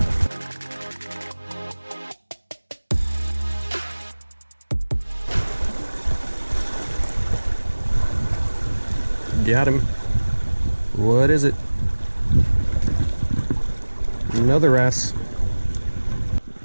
Got him. What is it? Another wrasse.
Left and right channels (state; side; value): inverted; both; correlation -1.00